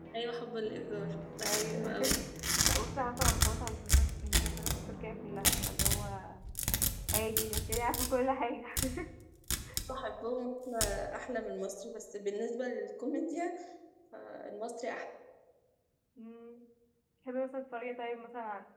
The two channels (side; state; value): both; identical; correlation 1.00